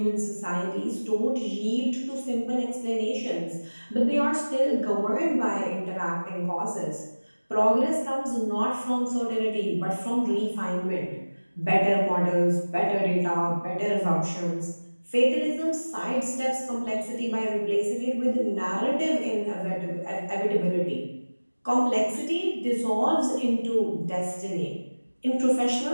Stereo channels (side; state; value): both; inverted; correlation -1.00